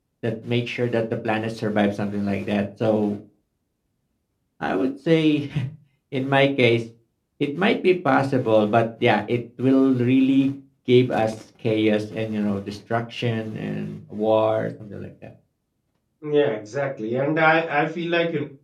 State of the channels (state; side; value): identical; both; correlation 1.00